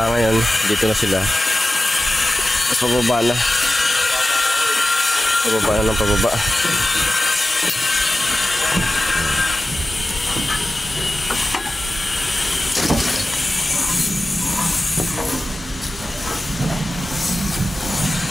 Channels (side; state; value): both; normal; correlation 0.94